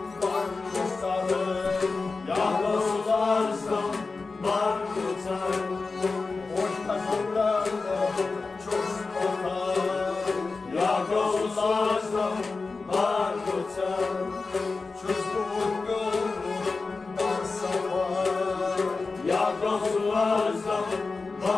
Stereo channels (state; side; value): quieter; right; 4.0 dB